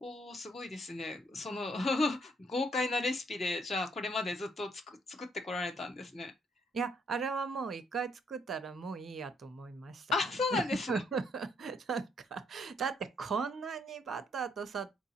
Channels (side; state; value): both; normal; correlation 0.70